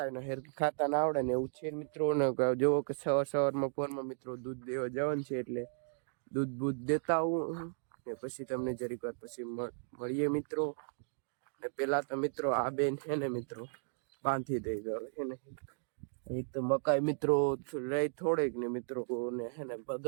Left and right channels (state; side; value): silent; left; digital silence